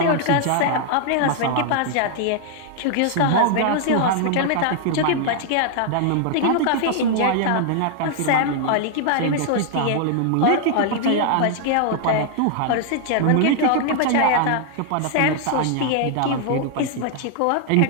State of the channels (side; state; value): both; different; correlation 0.00